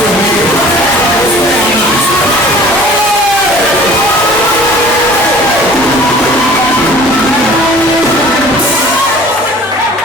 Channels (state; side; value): normal; both; correlation 0.47